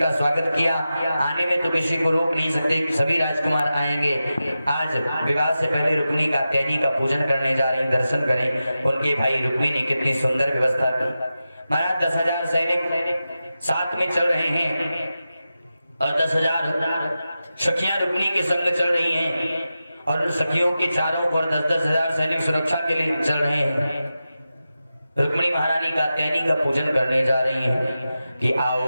का स्वागत किया। आने में तो किसी को रोक नहीं सकते कि सभी राजकुमार आएंगे। आज विवाह से पहले रुक्मिणी कात्यायनी का पूजन करने जा रहे हैं, दर्शन करें। उनके भाई रुक्मिणी ने कितनी सुंदर व्यवस्था की। महाराज 10,000 सैनिक साथ में चल रहे हैं और 10,000 सखियां रुक्मिणी के संग चल रही हैं और उन सखियों के चारों ओर 10,000 सैनिक सुरक्षा के लिए चल रहे हैं। रुक्मिणी महारानी कात्यायनी का पूजन करने जा रही हैं कि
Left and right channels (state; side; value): inverted; both; correlation -0.92